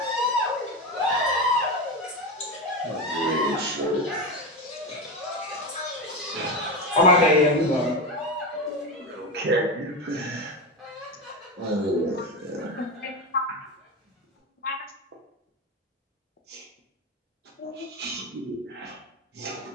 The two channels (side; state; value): both; normal; correlation 0.18